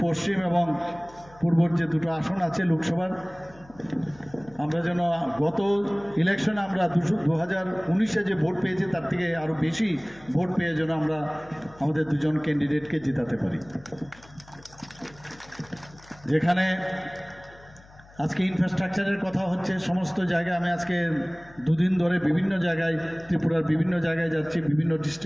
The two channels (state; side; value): noise; left; hum, 24 dB below the sound